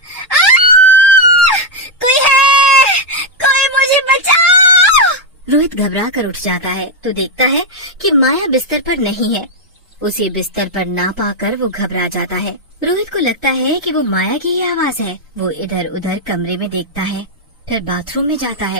कोई है, कोई मुझे बचाओ! रोहित घबरा कर उठ जाता है तो देखता है कि माया बिस्तर पर नहीं है। उसे बिस्तर पर ना पाकर वो घबरा जाता है। रोहित को लगता है कि वो माया की ही आवाज है। वो इधर उधर कमरे में देखता है, फिर बाथरूम में जाता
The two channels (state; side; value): normal; both; correlation 0.01